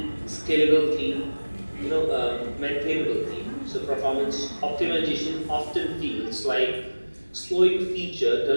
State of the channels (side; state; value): both; inverted; correlation -1.00